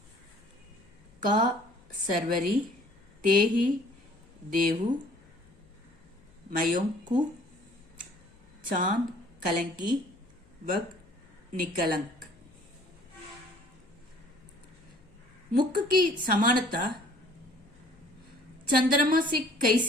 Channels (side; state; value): left; noise; hum, 30 dB below the sound